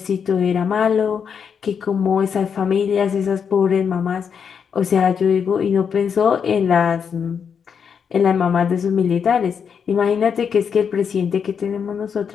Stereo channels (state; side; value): quieter; right; 6.9 dB